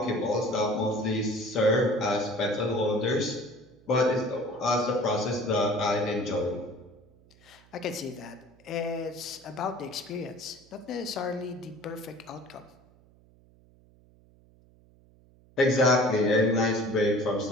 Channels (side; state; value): right; noise; hum, 28 dB below the sound